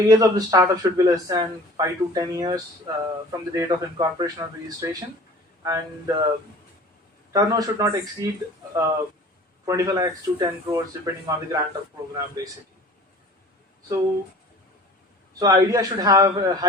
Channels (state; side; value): normal; both; correlation 0.45